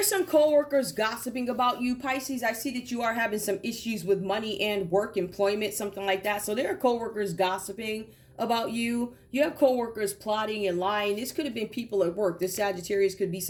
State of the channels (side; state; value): both; identical; correlation 1.00